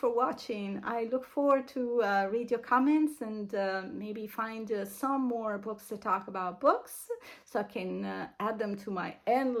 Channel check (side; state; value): both; identical; correlation 1.00